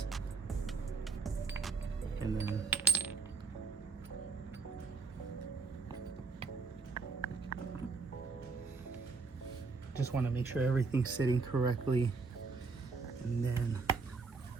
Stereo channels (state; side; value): quieter; left; 4.3 dB